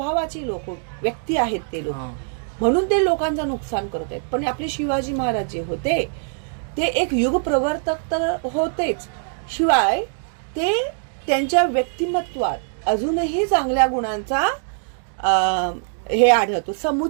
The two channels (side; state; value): left; silent; 62 dB below the other